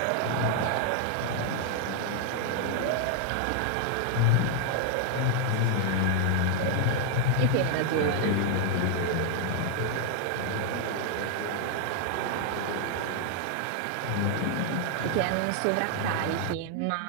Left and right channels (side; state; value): both; different; correlation 0.00